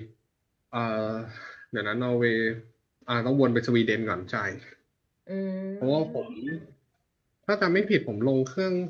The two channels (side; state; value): both; identical; correlation 1.00